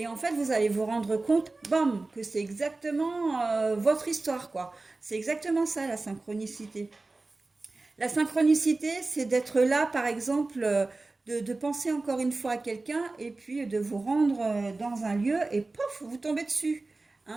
en fait, vous allez vous rendre compte, bam, que c'est exactement votre histoire, quoi. C'est exactement ça, la synchronicité. La synchronicité, c'est d'être là, par exemple, de penser encore une fois à quelqu'un et puis de vous rendre dans un lieu et pof, vous tombez dessus.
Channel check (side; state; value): left; quieter; 3.3 dB